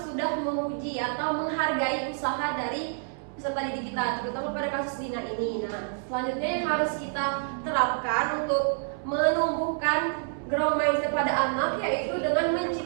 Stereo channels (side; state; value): left; silent; 59 dB below the other